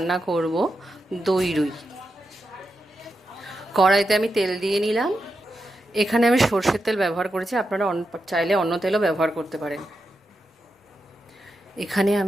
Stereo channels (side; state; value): both; normal; correlation 0.87